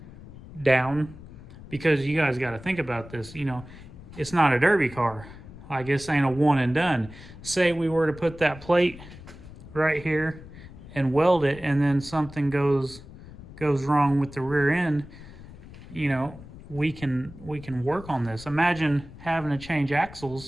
down, because you guys got to think about this. It's not a derby car. Like, this ain't a one and done. Say we were to put that plate right here and weld it, and then something goes wrong with the rear end, you know, we can work on this. Imagine having to change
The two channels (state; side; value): noise; left; rumble, 17 dB below the sound